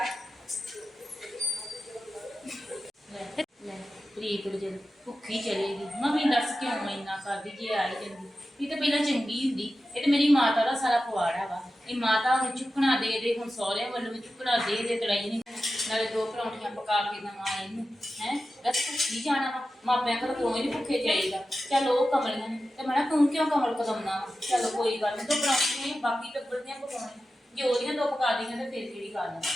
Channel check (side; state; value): both; normal; correlation 0.93